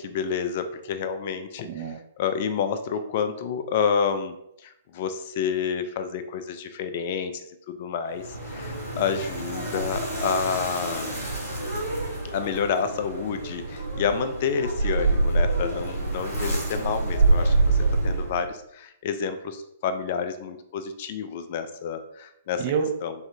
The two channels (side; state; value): both; inverted; correlation -0.57